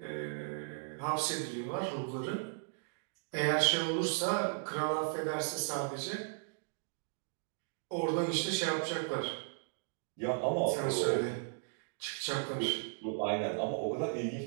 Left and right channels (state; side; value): silent; left; digital silence